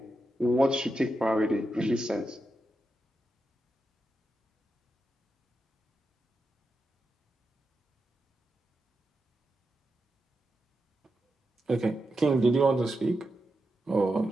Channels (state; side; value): normal; both; correlation 0.88